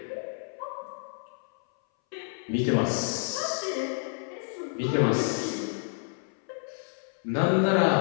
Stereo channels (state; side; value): silent; right; 58 dB below the other